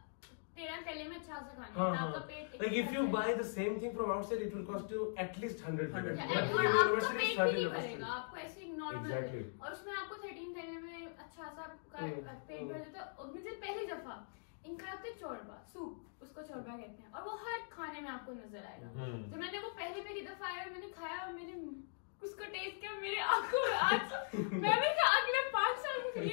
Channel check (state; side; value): silent; right; digital silence